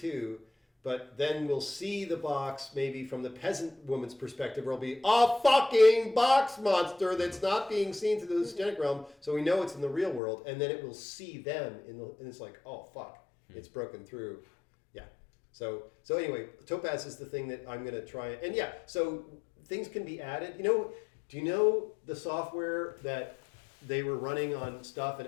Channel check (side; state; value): right; drops out; at 10.2 s